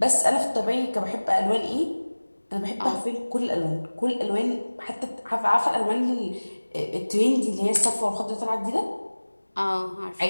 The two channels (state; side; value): inverted; both; correlation -1.00